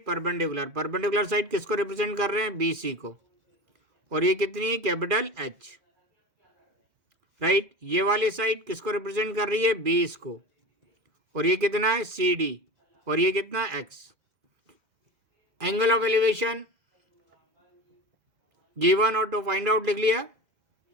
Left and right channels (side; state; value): left; late; 2.0 ms